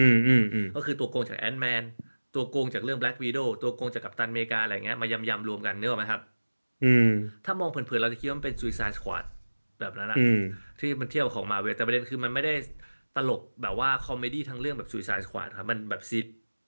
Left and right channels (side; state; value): both; inverted; correlation -1.00